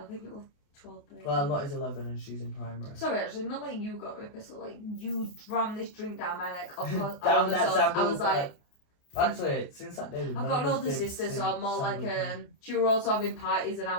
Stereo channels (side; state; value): right; late; 28 ms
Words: think it was 12, 13. Well, Lottie's 11 and she's in primary. Sorry, actually, not like you got me pissed off, like you rammed this drink down my neck. Of course, down that sample. I was like... Actually, since that day... I've got an older sister, so I'm more like... she were also having parties and I